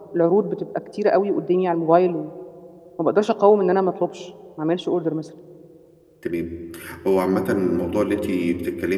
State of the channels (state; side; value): identical; both; correlation 1.00